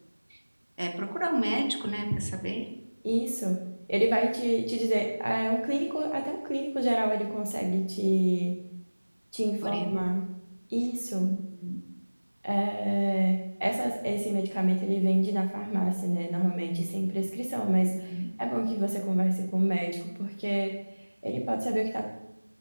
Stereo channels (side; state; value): both; inverted; correlation -1.00